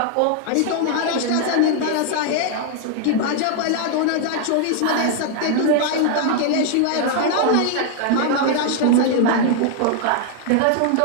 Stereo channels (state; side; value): different; both; correlation 0.00